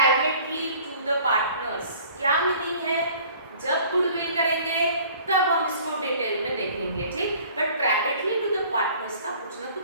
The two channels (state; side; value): inverted; both; correlation -0.51